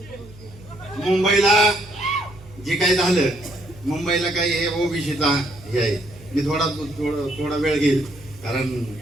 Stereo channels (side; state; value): right; noise; hum, 20 dB below the sound